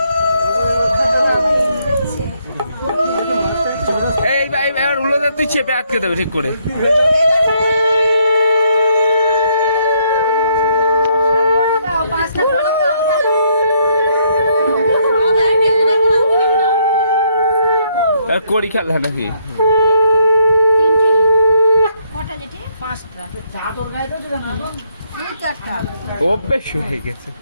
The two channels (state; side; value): inverted; both; correlation -0.72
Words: এই ভাই এবার উল্লো তুই চেপে আটকে দেবে ঠিক করে। আর করি খেলা নাকি? অভ্যেস হয়ে গেছে।